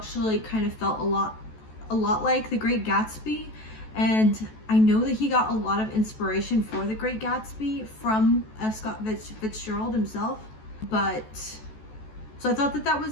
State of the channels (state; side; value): late; right; 14 ms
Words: kind of felt a lot like The Great Gatsby. And I know that he got a lot of inspiration for The Great Gatsby from F. Scott Fitzgerald himself. So I thought that